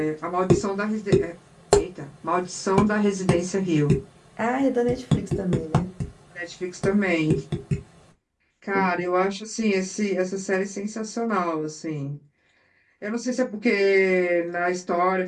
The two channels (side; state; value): both; identical; correlation 1.00